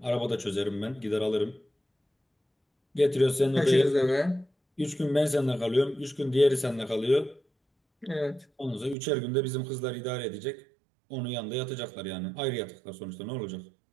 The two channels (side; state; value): left; drops out; at 9.0 s